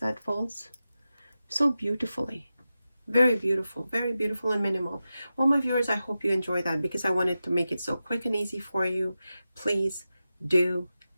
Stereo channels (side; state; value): both; inverted; correlation -0.92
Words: falls? So beautifully. Very beautiful and minimal. Well, my viewers, I hope you enjoy that, because I wanted to make it so quick and easy for you. Please do